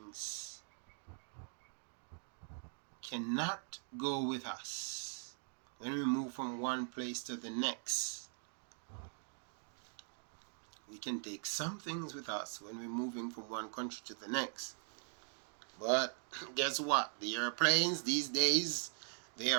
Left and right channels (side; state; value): left; silent; 50 dB below the other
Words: cannot go with us when we move from one place to the next. We can take some things with us when we're moving from one country to the next. But guess what? The airplanes these days, they